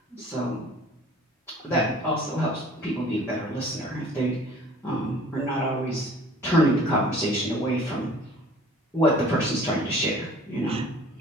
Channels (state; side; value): normal; both; correlation 0.49